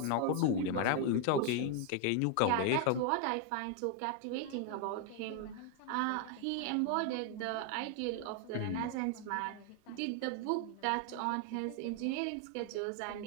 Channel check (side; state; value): both; different; correlation 0.00